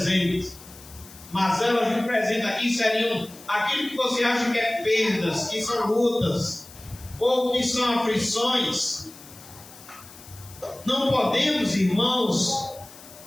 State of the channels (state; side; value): noise; left; hiss, 19 dB below the sound